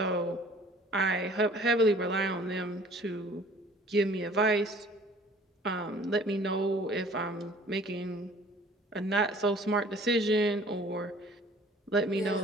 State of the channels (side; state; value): both; normal; correlation 0.52